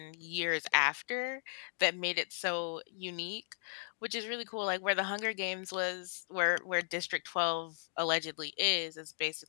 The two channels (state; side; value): silent; right; digital silence